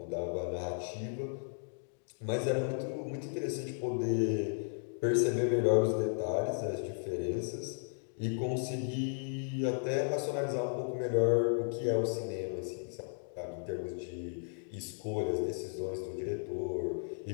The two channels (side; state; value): right; silent; digital silence